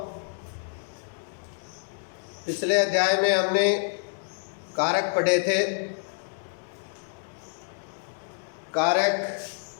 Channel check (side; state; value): right; silent; digital silence